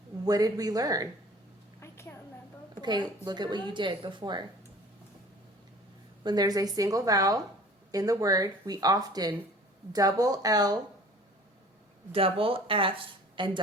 What did we learn? I can't remember. Okay, look at what you did before. When there's a single vowel in the word, we often double L, double F, and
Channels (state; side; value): normal; both; correlation 0.47